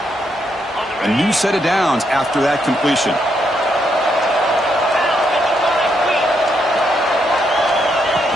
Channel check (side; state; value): both; normal; correlation 0.77